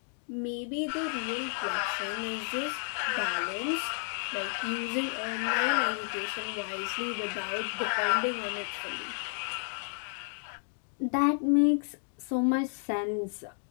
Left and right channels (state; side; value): silent; right; 57 dB below the other